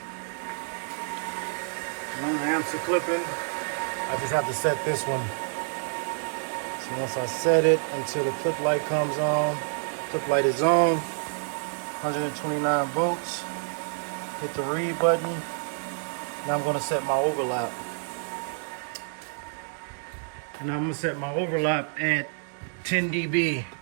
One of the amps are clipping. I just have to set this one. So once I set it until the clip light comes on, clip light is on, 129 volts. Hit the read button. Now I'm gonna set my overlap. And I'm gonna set my overlap at 10 dB.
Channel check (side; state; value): left; silent; digital silence